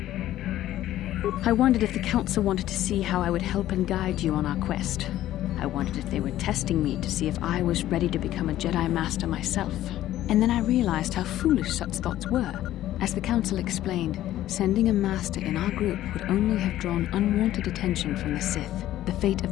I wondered if the Council wanted to see how I would help and guide you on our quest. I wondered if they were testing me to see if I was ready to become a Jedi Master myself. And then I realized how foolish such thoughts were. As the Council explained, sending a Master in our group would only have drawn unwanted attention from the Sith. The fate of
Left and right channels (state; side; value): quieter; right; 13.6 dB